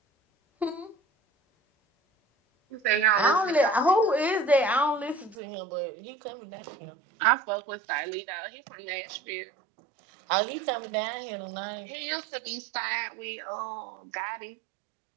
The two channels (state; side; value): drops out; left; at 5.4 s